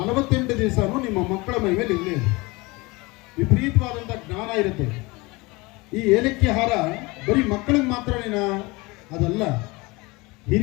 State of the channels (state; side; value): quieter; right; 24.2 dB